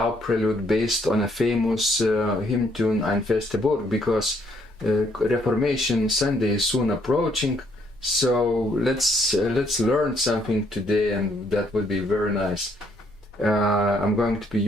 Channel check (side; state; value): both; normal; correlation 0.69